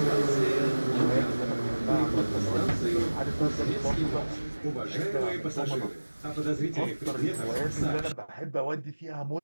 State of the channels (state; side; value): inverted; both; correlation -1.00